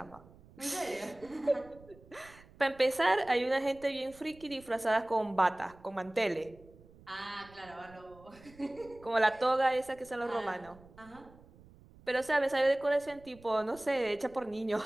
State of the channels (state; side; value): noise; right; rumble, 23 dB below the sound